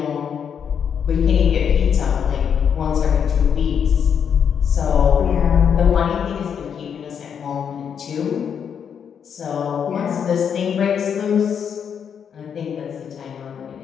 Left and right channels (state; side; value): quieter; right; 7.6 dB